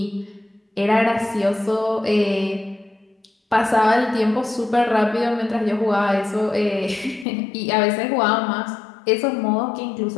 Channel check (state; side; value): drops out; right; at 7.2 s